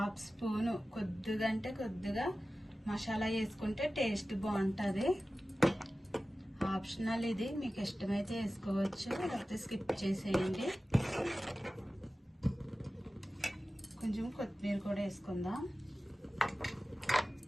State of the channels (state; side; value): normal; both; correlation 0.95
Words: స్పూను కొద్దిగా మసాలా వేసుకుంటే టేస్ట్ బాగుంటుంది. ఆప్షనల్ ఇది, మీకు ఇష్టమైతే వేసుకోవచ్చు, లేకపోతే స్కిప్ చేసేయండి. కొంచెం కొత్తిమీర కూడా వేసుకుందాం.